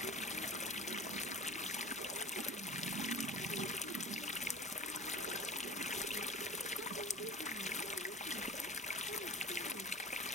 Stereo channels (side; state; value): both; normal; correlation 0.39